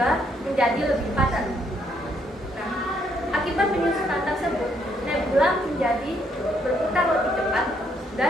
menjadi lebih padat. Nah, akibat penyusutan tersebut, nebula menjadi berputar lebih cepat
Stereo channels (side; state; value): both; normal; correlation 0.71